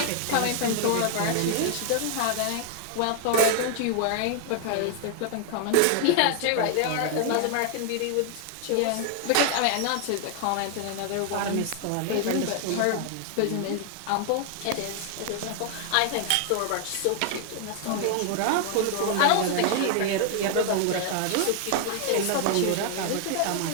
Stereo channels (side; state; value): both; different; correlation 0.00